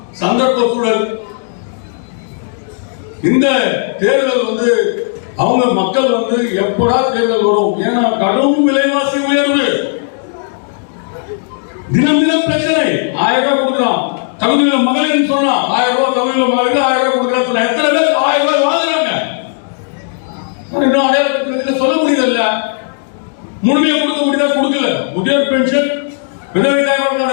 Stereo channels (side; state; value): right; silent; digital silence